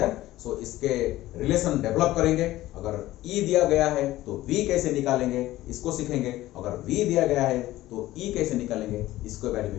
So इसके relation develop करेंगे। अगर E दिया गया है तो V कैसे निकालेंगे, इसको सीखेंगे। अगर V दिया गया है तो E कैसे निकालेंगे, इसके बारे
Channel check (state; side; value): quieter; right; 16.1 dB